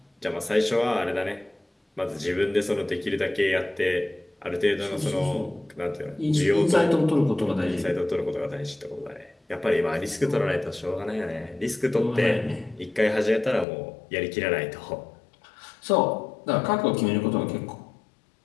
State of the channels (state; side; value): drops out; right; at 13.7 s